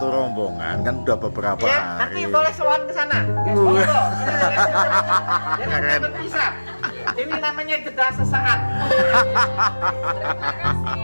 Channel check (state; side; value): inverted; both; correlation -1.00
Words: rombongan kan udah beberapa Ya, nanti hari. boleh sowan ke sana. Monggo. Jadi kita berpisah. Ini namanya jeda sesaat.